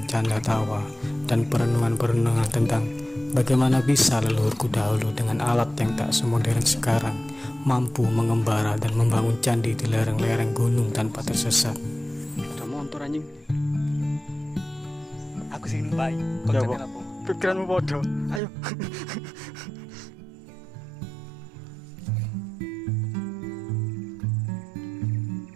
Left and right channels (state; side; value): drops out; left; at 18.4 s